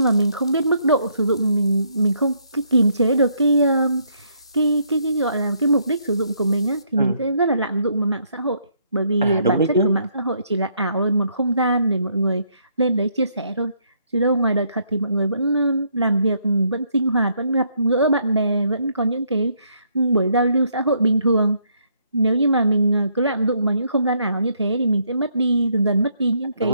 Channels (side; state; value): both; inverted; correlation -0.72